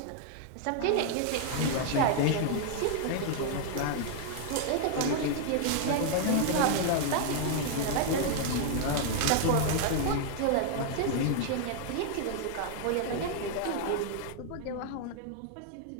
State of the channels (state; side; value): different; both; correlation 0.00